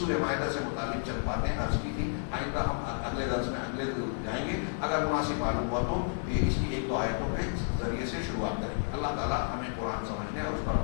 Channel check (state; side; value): silent; right; 56 dB below the other